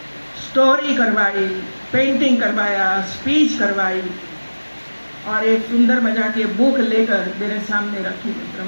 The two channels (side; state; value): both; inverted; correlation -1.00